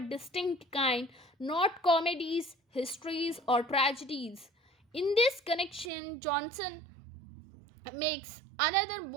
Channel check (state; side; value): drops out; left; at 5.9 s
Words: distinct kind, not comedies, histories, or tragedies. In this connection, Johnson makes another